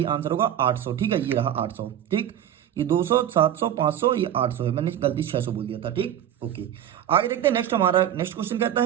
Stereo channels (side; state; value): left; quieter; 10.8 dB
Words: आंसर होगा 800, ठीक है। ये रहा 800, ठीक। ये 200, 700, 500, ये 800 है, मैंने गलती 600 बोल दिया था, ठीक, ओके। आगे देखते हैं नेक्स्ट। हमारा नेक्स्ट क्वेश्चन कहता